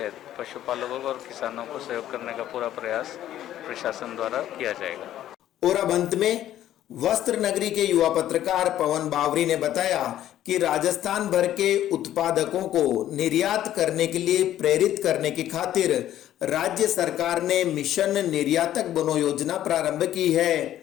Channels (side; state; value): right; quieter; 12.3 dB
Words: पशुपालकों और किसानों को सहयोग करने का पूरा प्रयास प्रशासन द्वारा किया जाएगा। और अब अंत में वस्त्र नगरी के युवा पत्रकार पवन बावरी ने बताया कि राजस्थान भर के उत्पादकों को निर्यात करने के लिए प्रेरित करने की खातिर राज्य सरकार ने मिशन निर्यातक बनो योजना प्रारंभ की है।